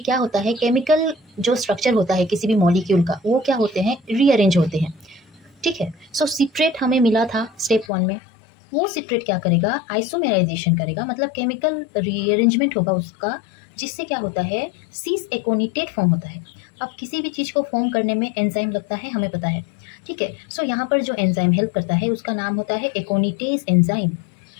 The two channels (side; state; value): right; drops out; at 7.9 s